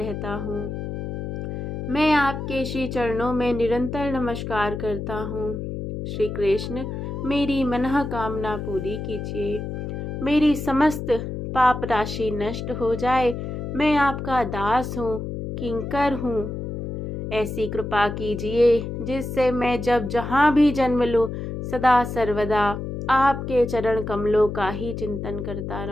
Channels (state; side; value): noise; left; hum, 5 dB below the sound